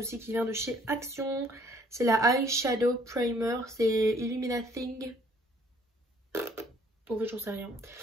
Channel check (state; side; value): normal; both; correlation 0.60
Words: qui vient de chez Action. C'est la Eyeshadow Primer. C'est Illuminating. En fait, j'en sais rien.